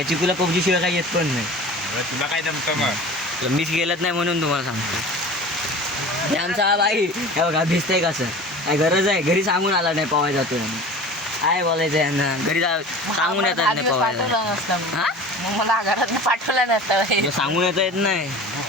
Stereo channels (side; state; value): both; normal; correlation 0.39